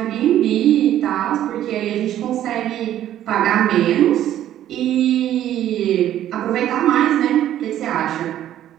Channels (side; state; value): left; quieter; 11.9 dB